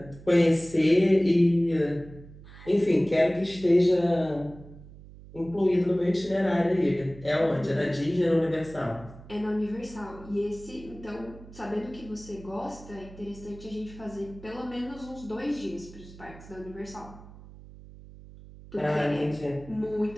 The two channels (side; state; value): right; noise; hum, 18 dB below the sound